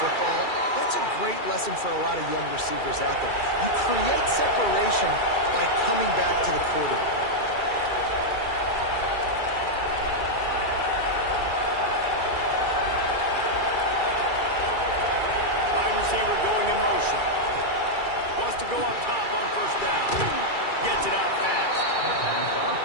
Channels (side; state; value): right; late; 2.3 ms